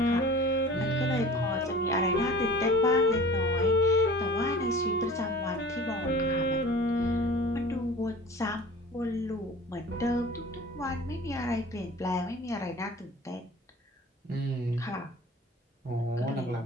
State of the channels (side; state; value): both; normal; correlation 0.43